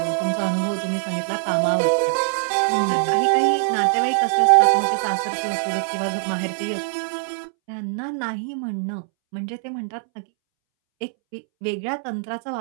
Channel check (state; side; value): silent; left; 63 dB below the other